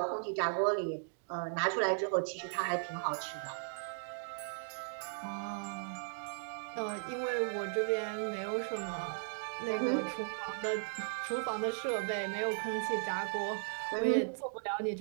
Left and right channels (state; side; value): silent; left; digital silence